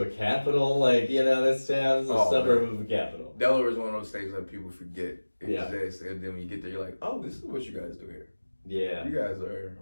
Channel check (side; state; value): both; inverted; correlation -1.00